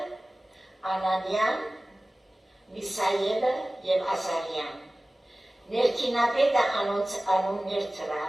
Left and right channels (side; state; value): both; normal; correlation 0.97